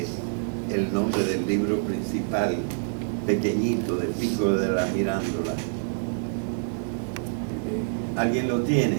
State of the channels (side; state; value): left; silent; digital silence